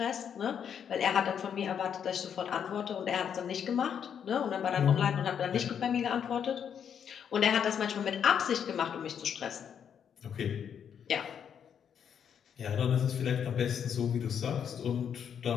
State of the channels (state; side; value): quieter; right; 8.1 dB